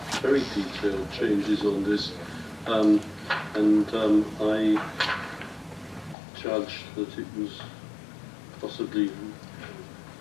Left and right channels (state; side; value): drops out; right; at 6.2 s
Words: very detailed changes on this, and I judged that it was possibly